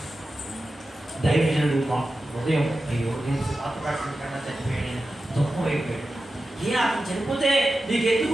దైవజనుడు ఉదయం అయ్యో నేను మాట్లాడుకుంటా చనిపోయాడు, దుఃఖం అయిపోయాడు. అతను చనిపోతే నీకు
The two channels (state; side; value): normal; both; correlation 0.93